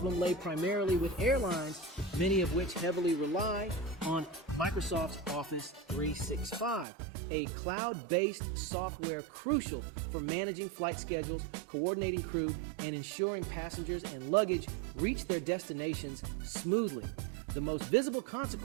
lay primarily with airlines, many of which heavily rely on Microsoft's Office 365, a cloud-based software crucial for managing flight schedules, coordinating crew, and ensuring passengers and luggage reach their destinations smoothly. The most visible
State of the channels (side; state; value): left; drops out; at 6.9 s